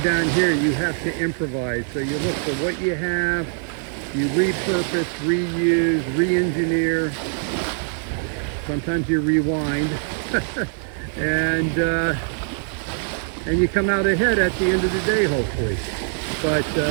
down here you have to improvise. So you look for what you have, you repurpose, reuse, re-engineer. Sometimes you rewind. and you come out ahead at the end of the day, hopefully. But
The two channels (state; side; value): silent; left; 60 dB below the other